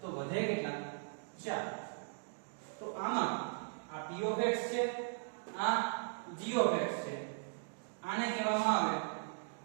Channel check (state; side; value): silent; left; digital silence